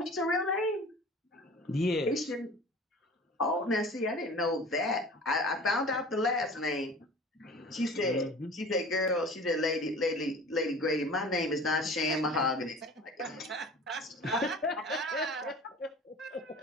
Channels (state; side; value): normal; both; correlation 0.41